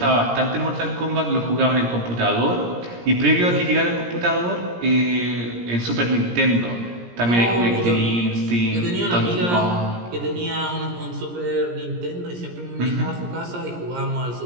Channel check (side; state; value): left; late; 17 ms